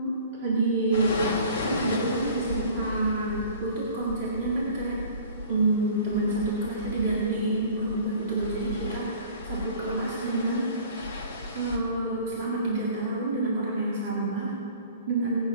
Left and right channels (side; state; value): both; inverted; correlation -0.48